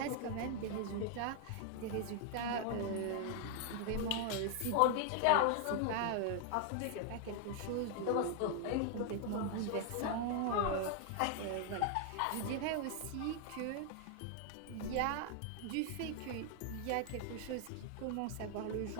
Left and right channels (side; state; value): both; different; correlation 0.00